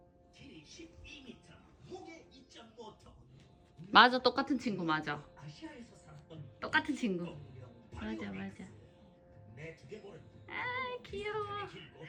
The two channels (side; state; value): both; identical; correlation 1.00